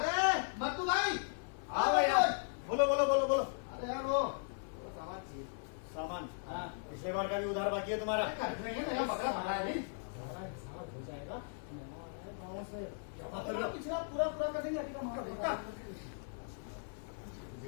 मत्तू भाई। हाँ भैया, बोलो बोलो बोलो बोलो। अरे यार वो सामान चाहिए। सामान? हाँ, पिछले बार का भी उधार बाकी है तुम्हारा? कर देंगे, मेरा बकरा भरा है नहीं। हो जाएगा। गाँव से जमा कर लो। पिछला पूरा पूरा कर देंगे, अभी का माल पक्का।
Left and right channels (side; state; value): right; silent; digital silence